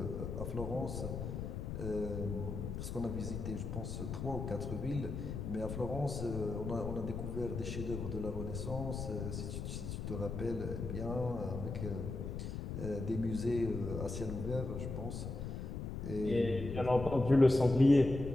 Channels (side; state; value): left; noise; rumble, 5 dB below the sound